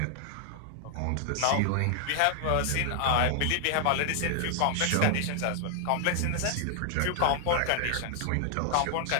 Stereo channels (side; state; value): both; different; correlation 0.00